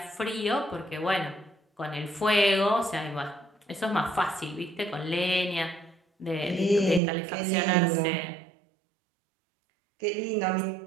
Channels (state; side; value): drops out; left; at 7.0 s